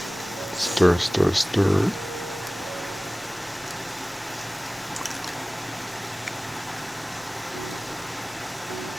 stir, stir, stir.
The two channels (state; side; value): normal; both; correlation 0.98